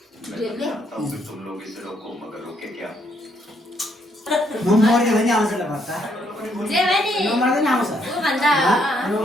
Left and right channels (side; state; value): both; normal; correlation 0.72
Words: तुम लोग इसे रोको मगर रोके क्या म मर्यो भने आउँछ ल भत्ता जे भने नमर्दैन आउँछ उ भन्दा